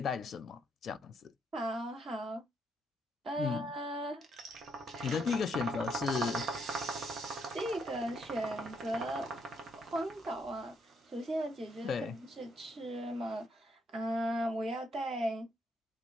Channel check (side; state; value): both; normal; correlation 0.74